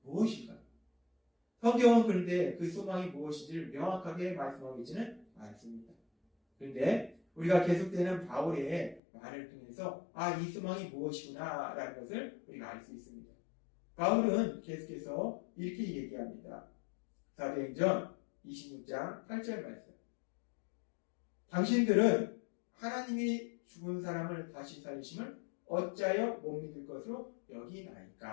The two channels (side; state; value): right; drops out; at 9.0 s